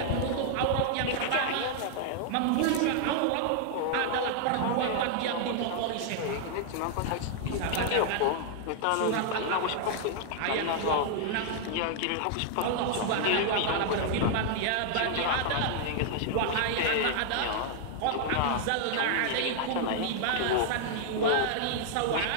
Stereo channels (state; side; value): different; both; correlation -0.01